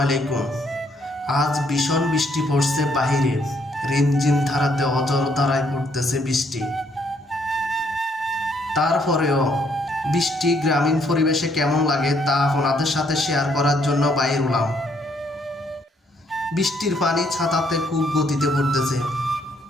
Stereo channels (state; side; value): normal; both; correlation 0.70